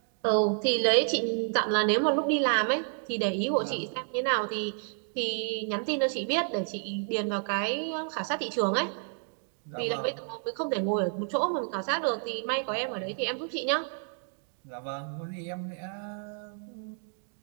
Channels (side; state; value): left; silent; 58 dB below the other